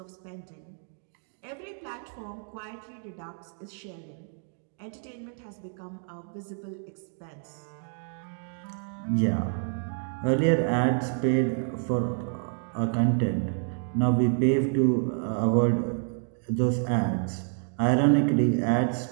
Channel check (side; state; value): left; silent; 55 dB below the other